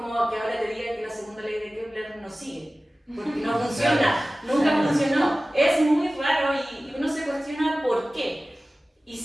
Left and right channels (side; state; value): both; normal; correlation 0.97